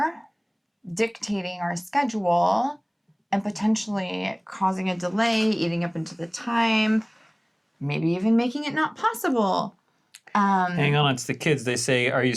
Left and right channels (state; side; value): identical; both; correlation 1.00